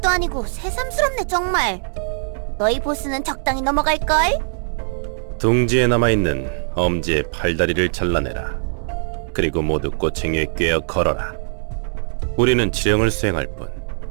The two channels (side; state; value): left; silent; digital silence